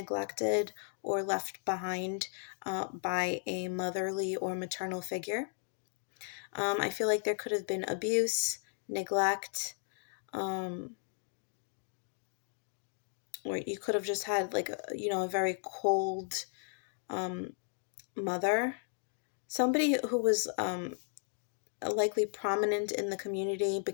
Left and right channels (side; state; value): right; silent; 54 dB below the other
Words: or left behind by a motherly or maternal figure. I feel like there could have been abuse, neglect, or you could have just had like a very cold mother, somebody who was likely prominent in the community